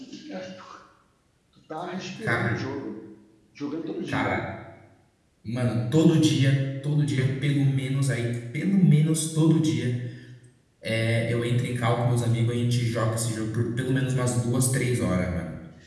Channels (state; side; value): identical; both; correlation 1.00